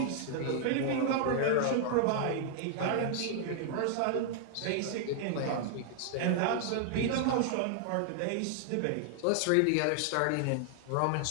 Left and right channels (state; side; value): different; both; correlation 0.00